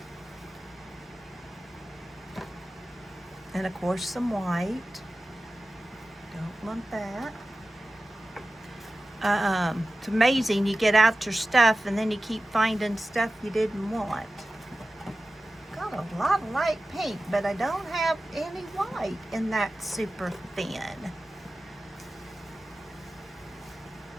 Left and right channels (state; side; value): normal; both; correlation 0.95